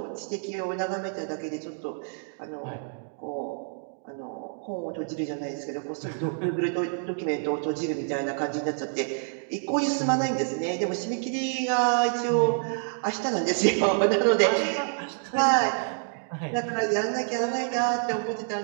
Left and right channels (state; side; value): silent; left; 60 dB below the other